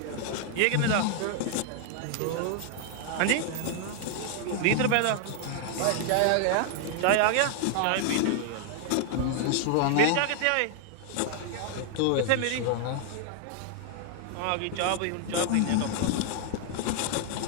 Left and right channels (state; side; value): different; both; correlation 0.00